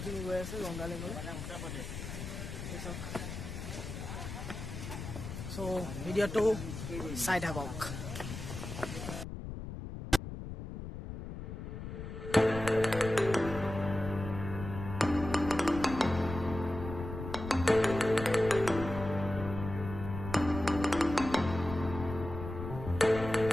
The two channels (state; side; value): noise; left; rumble, 8 dB below the sound